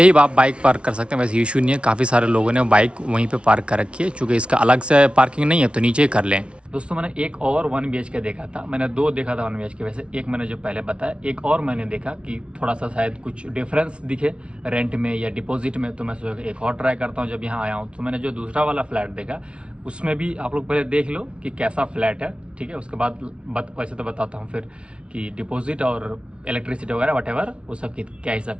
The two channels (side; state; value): left; late; 0.059 ms